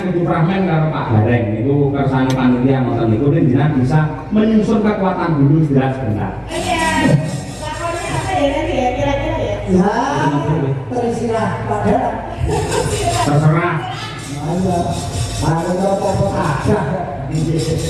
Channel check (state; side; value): identical; both; correlation 1.00